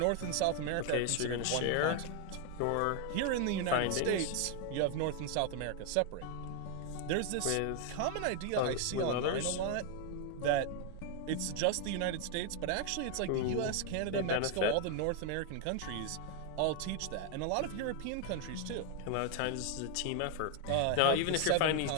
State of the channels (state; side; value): different; both; correlation 0.00